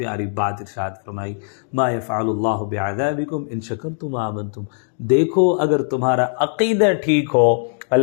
بات ارشاد فرمائی، ما یفعل اللہ بعذابکم ان شکرتم وآمنتم۔ دیکھو اگر تمہارا عقیدہ ٹھیک ہو،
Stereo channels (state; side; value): silent; right; digital silence